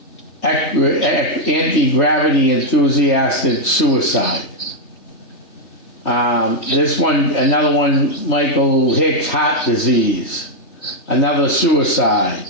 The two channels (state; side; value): late; right; 3.2 ms